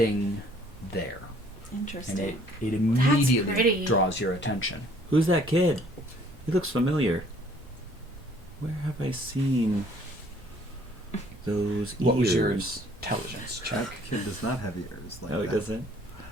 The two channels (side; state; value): both; normal; correlation 0.59